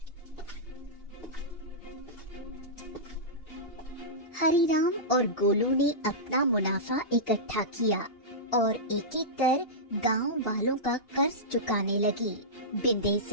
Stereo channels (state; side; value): late; right; 2.8 ms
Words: हरिराम और गोलू ने अपना मुनाफा इकट्ठा किया और एक एक कर गांव वालों का कर्ज चुकाने लगी।